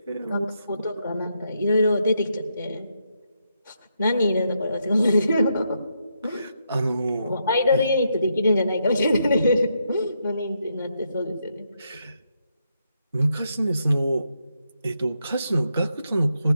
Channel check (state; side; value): inverted; both; correlation -0.80